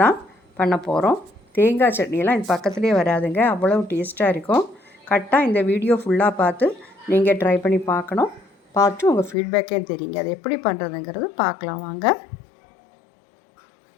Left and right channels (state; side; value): drops out; right; at 9.3 s